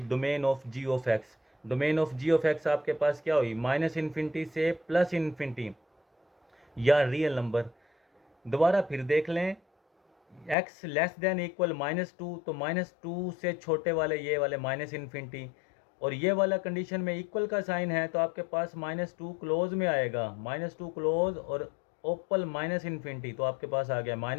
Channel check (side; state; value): right; drops out; at 10.6 s